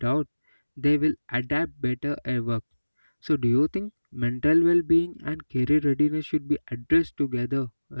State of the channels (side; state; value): both; inverted; correlation -1.00